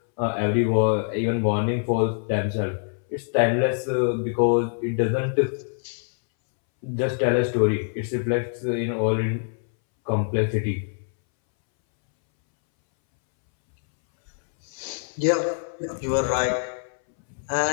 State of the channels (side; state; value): right; silent; 62 dB below the other